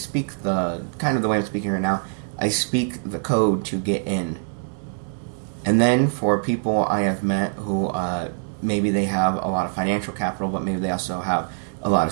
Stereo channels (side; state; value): left; silent; digital silence